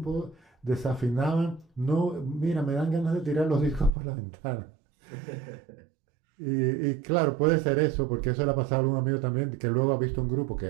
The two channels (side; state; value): left; drops out; at 3.9 s